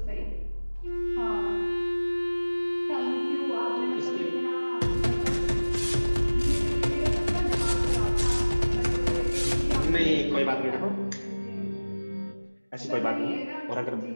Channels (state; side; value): inverted; both; correlation -1.00